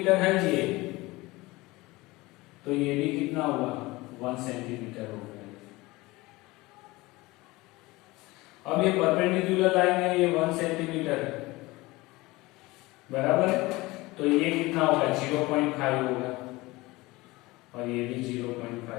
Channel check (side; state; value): right; quieter; 21.1 dB